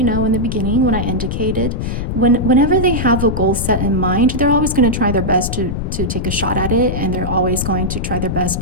know, in the beginning when I indicated, whenever they have a goal set in mind, they're always going to try their best to take a shot at it, and they're always going to try their best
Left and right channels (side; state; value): left; noise; rumble, 3 dB below the sound